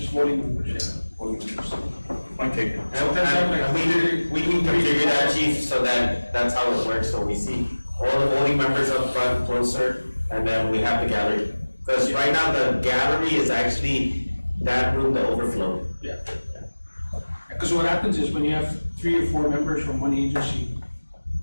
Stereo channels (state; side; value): inverted; both; correlation -1.00